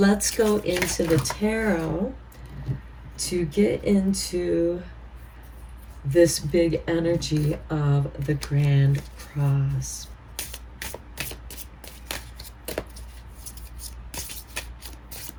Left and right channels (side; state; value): both; identical; correlation 1.00